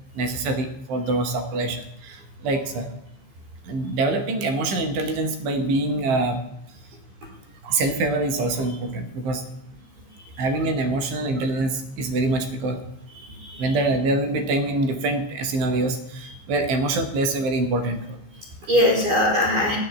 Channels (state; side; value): late; left; 15 ms